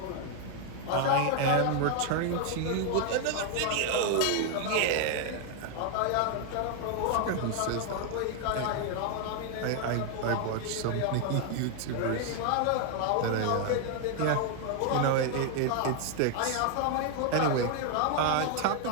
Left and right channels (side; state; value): both; different; correlation 0.00